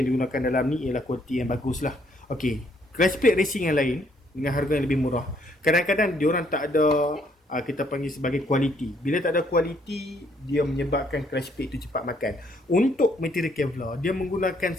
digunakan dalam ni ialah kualiti yang bagus lah. Okey, clutch plate racing yang lain dengan harga yang lebih murah, kadang-kadang diorang tak ada kita panggil sebagai kualiti. Bila tak ada kualiti, dia menyebabkan clutch plate tu cepat makan. Untuk material Kevlar, dia menggunakan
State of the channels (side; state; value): both; normal; correlation 0.68